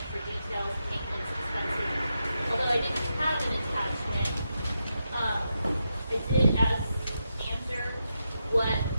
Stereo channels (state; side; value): inverted; both; correlation -0.86